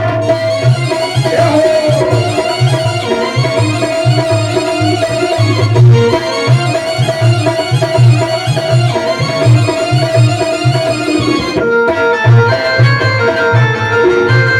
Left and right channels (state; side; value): identical; both; correlation 1.00